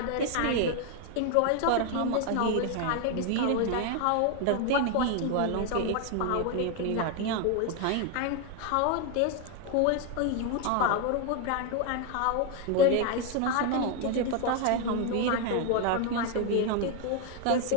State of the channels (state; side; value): different; both; correlation 0.01